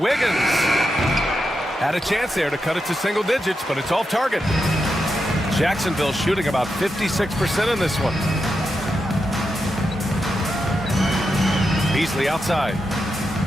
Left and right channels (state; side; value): normal; both; correlation 0.87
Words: Had a chance there to cut it to single digits, but it's off target. Jacksonville shooting about 56% in this one. Beasley outside.